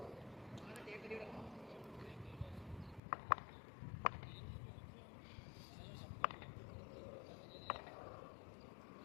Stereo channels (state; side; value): drops out; right; at 3.0 s